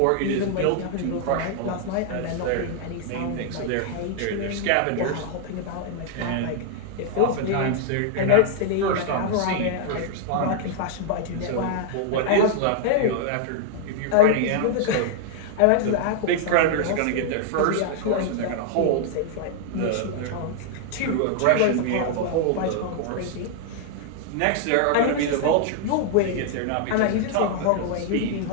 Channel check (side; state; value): both; different; correlation 0.00